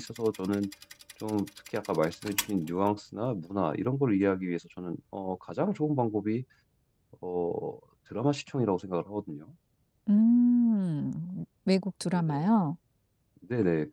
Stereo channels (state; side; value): identical; both; correlation 1.00